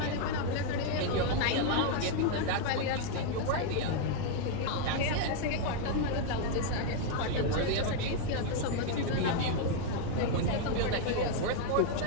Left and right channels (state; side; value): different; both; correlation 0.00